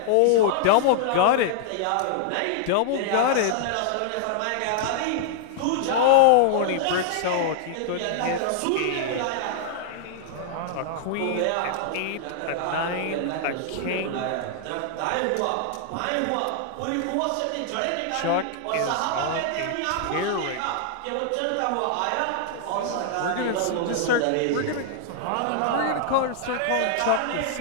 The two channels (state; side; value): different; both; correlation -0.01